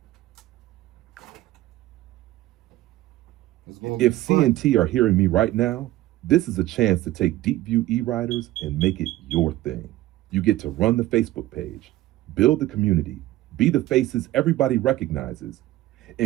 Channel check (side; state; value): left; quieter; 16.0 dB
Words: If CNT are hearing me right now, this is a chance to take DeepView eWriters and make it your thing. You get to run the Facebook page, build the community, be the faces everybody recognizes,